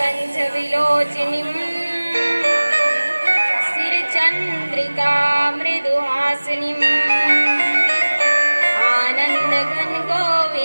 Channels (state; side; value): inverted; both; correlation -1.00